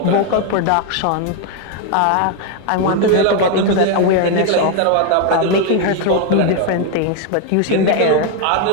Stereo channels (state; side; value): different; both; correlation 0.01